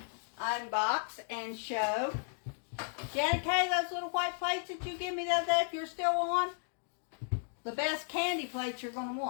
unbox and show. Janet Kay, those little white plates that you give me the other day, if you're still on, the best candy plates you're going to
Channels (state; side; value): silent; right; digital silence